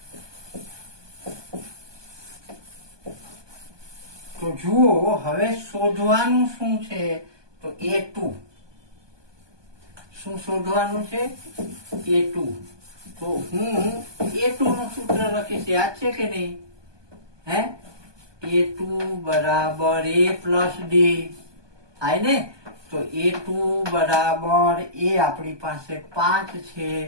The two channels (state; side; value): late; left; 1.2 ms